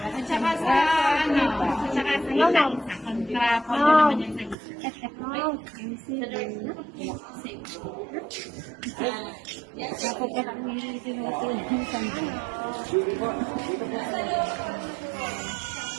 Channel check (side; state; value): left; drops out; at 4.5 s